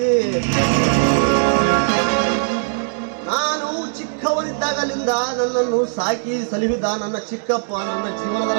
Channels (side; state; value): left; silent; digital silence